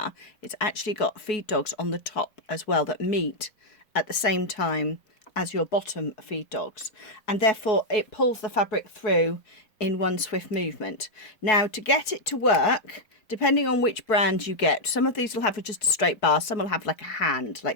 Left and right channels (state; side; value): late; right; 4.7 ms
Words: it's actually got feed dogs on the top as well that meet at the same time as your bottom feed dogs, and therefore it pulls the fabric through in one swift movement. Now to get it to work, depending on which brand you get, some of these will have just a straight bar, some will have like a hand